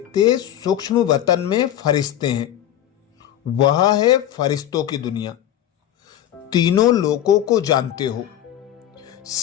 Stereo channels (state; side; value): quieter; right; 11.6 dB